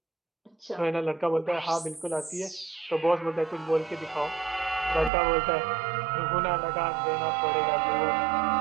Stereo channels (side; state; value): left; drops out; at 5.1 s